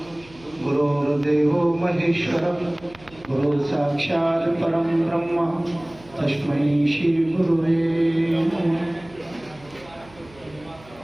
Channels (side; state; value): right; noise; hum, 24 dB below the sound